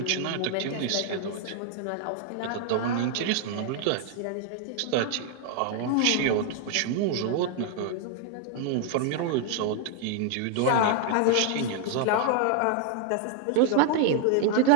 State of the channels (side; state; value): both; different; correlation 0.00